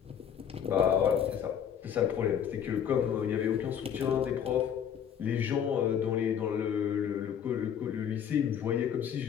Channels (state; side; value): quieter; right; 8.6 dB